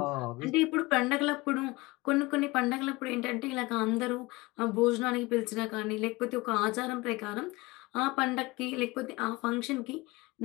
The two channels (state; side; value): quieter; right; 22.3 dB